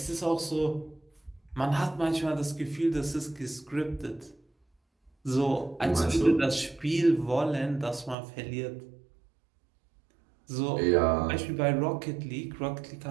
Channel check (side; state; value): left; drops out; at 8.2 s